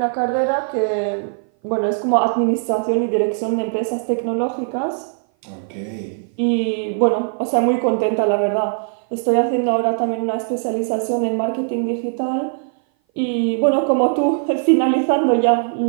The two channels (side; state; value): left; silent; 58 dB below the other